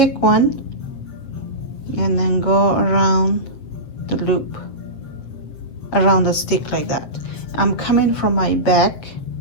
one and then go around the loop, around the stick like that. I'm coming from my back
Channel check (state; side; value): late; right; 7.9 ms